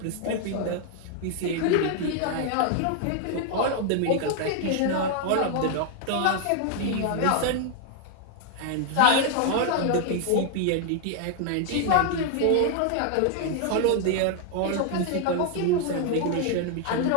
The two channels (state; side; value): different; both; correlation 0.00